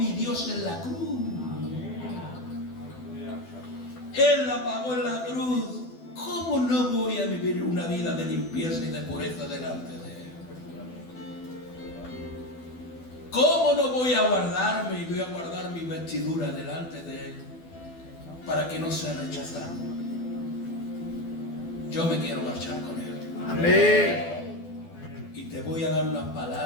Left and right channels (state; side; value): late; right; 12 ms